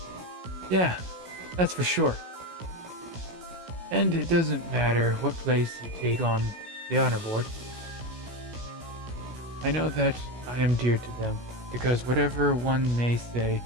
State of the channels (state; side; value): late; left; 16 ms